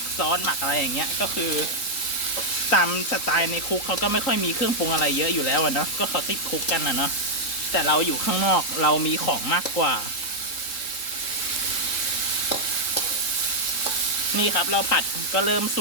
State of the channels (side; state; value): right; late; 4.0 ms